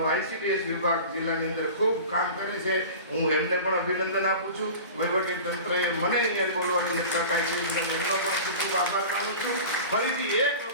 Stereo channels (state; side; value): inverted; both; correlation -0.36